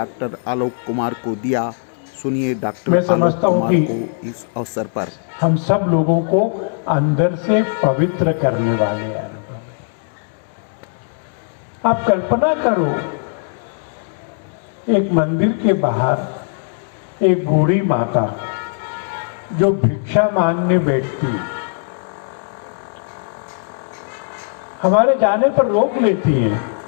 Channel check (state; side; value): silent; right; digital silence